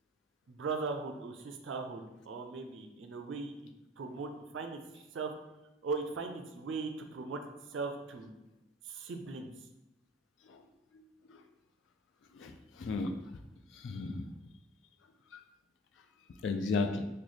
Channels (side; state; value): both; normal; correlation 0.38